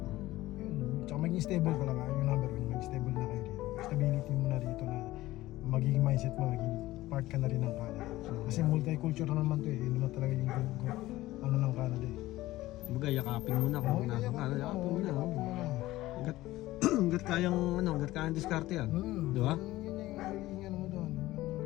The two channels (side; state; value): right; quieter; 16.9 dB